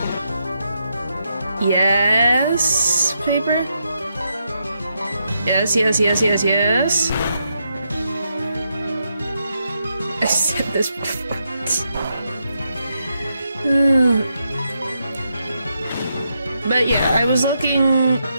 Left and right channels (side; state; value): both; inverted; correlation -0.81